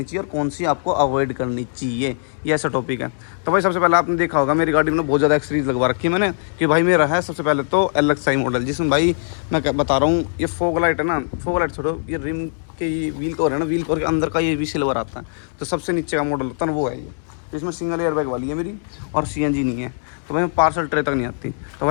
चाहिए और कौन सी आपको अवॉइड करनी चाहिए, ये ऐसा टॉपिक है। तो भाई सबसे पहले आपने देखा होगा मेरी गाड़ी में बहुत ज़्यादा एक्सेसरीज लगवा रखी है मैंने, कि भाई मेरा है सबसे पहले तो LXi मॉडल, जिसमें भाई मैं क्या बता रहा हूँ, ये फॉग लाइट है ना, फॉग लाइट छोड़ो, ये रिम के ये व्हील कवर है ना, व्हील कवर के अंदर का ये भी सिल्वर आता है, तो सबसे नीचे का मॉडल होता है ना वो है ये। तो इसमें सिंगल एयर बैग वाली है मेरी और CNG नहीं है, तो भाई पार्सल ट्रे तक नहीं आती। तो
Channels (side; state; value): right; silent; digital silence